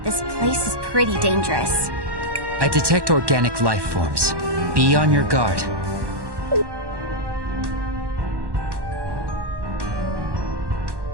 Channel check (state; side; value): late; left; 1.1 ms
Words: this place is pretty dangerous. I detect organic life forms. Be on your guard.